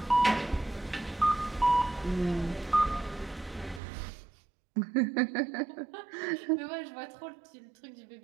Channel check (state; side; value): drops out; left; at 3.8 s